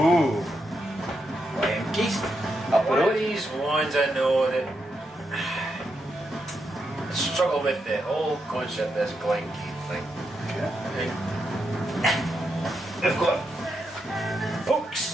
Glen up the One of road. these ones I know that I struggle with the whole concept of this Glen thing. Okay. They've got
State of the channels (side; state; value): both; normal; correlation 0.83